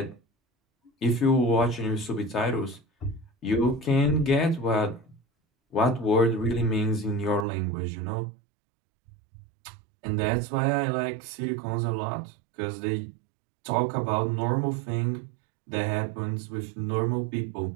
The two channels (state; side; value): drops out; left; at 7.5 s